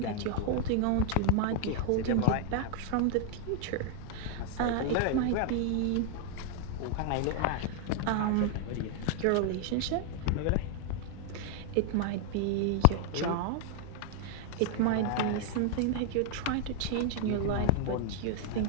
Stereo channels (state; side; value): different; both; correlation 0.00